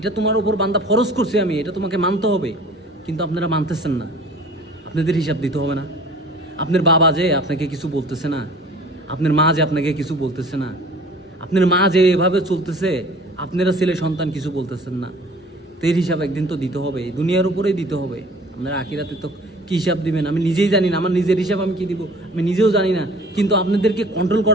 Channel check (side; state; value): both; normal; correlation 0.48